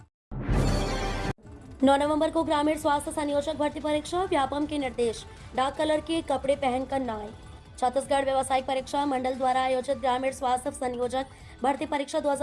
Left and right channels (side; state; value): both; identical; correlation 1.00